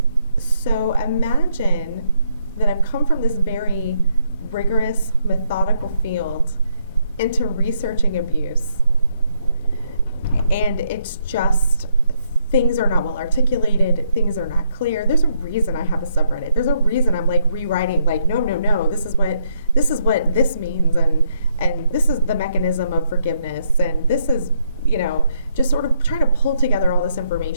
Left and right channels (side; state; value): both; inverted; correlation -0.74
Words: so imagine that I've come from this very rigorous, methodical field into researching abuse. And it's just, things are not well articulated, things are not clear. There's a reason I have a subreddit. There's a reason I'm like rewriting, like, no, this is what this means, and this is the mechanism of forgiveness, and this is, just sort of trying to pull together all this